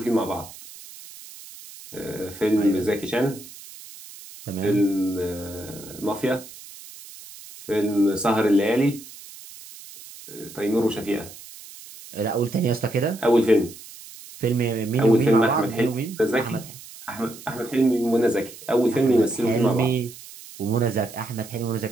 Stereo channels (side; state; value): right; noise; hiss, 17 dB below the sound